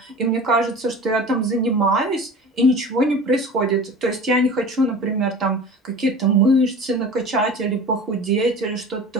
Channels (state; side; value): normal; both; correlation 0.37